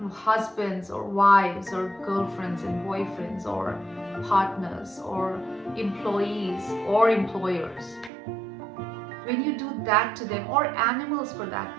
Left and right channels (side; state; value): left; drops out; at 8.1 s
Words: husbands or wives or girlfriends and boyfriends or partners or employees or employers, when you do that to them, or animals for that